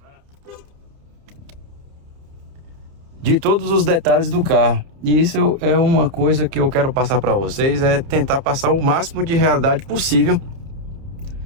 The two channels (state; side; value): late; left; 30 ms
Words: De todos os detalhes do carro. E isso é uma coisa que eu quero passar para vocês, é tentar passar o máximo de realidade possível